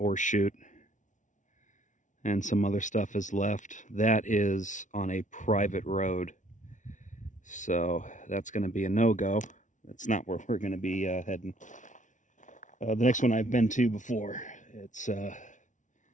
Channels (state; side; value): late; right; 0.37 ms